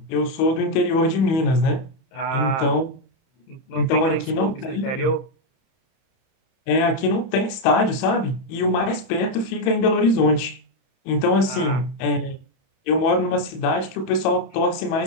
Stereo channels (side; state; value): right; late; 31 ms